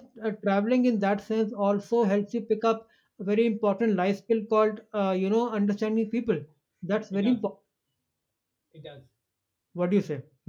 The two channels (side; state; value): both; identical; correlation 1.00